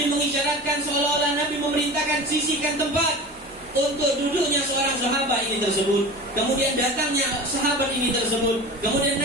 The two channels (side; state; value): both; normal; correlation 0.34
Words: mengisyaratkan seolah-olah Nabi memerintahkan sisihkan tempat untuk duduknya seorang sahabat ini tersebut. Kemudian datangnya sahabat ini tersebut. Kemudian